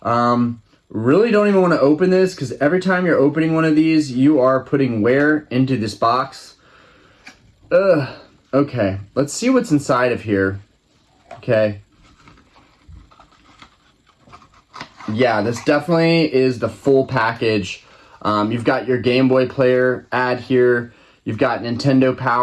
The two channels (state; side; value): identical; both; correlation 1.00